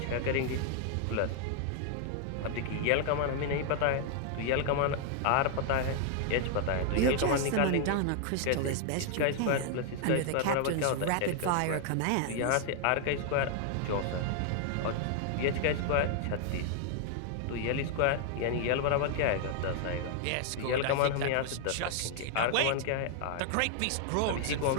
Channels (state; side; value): different; both; correlation 0.00